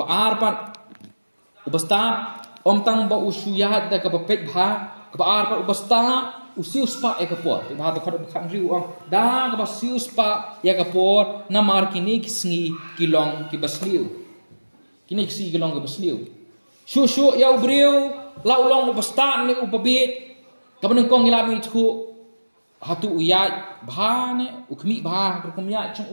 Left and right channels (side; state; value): both; inverted; correlation -1.00